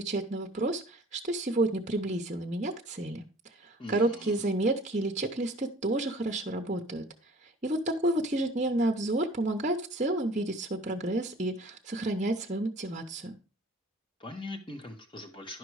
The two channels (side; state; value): both; normal; correlation 0.50